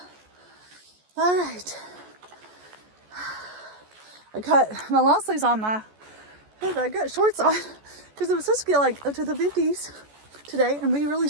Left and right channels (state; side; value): late; left; 14 ms